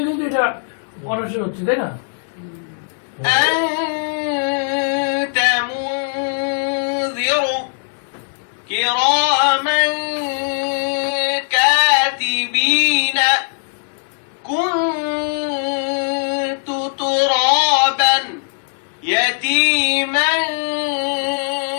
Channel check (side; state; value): right; silent; 66 dB below the other